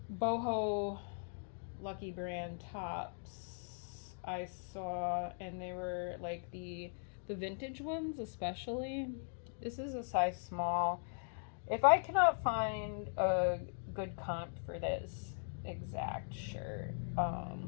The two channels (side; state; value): right; silent; digital silence